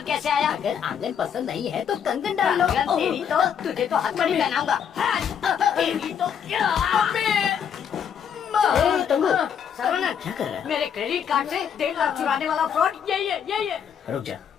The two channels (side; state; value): right; quieter; 8.0 dB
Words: कैसे आया? अगर आंगन पसंद नहीं है तो कंगन डाल लो। आंगन तेरी तो, तुझे तो हथकड़ी पहनाऊंगा। तेरी तो सर्वनंद, क्या कर रहा है? मेरे क्रेडिट कार्ड से 1.5 लाख चुराने वाला फ्रॉड यही है। रुक जा,